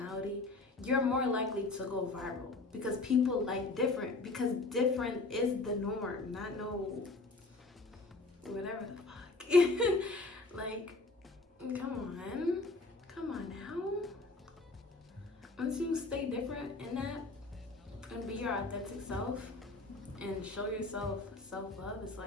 you're more likely to go viral, because people like different, because different is the norm, not no whatever the fuck. Like, come on now. Once you stay different in that and be your authentic self and show yourself self-love, it's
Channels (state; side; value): quieter; right; 3.4 dB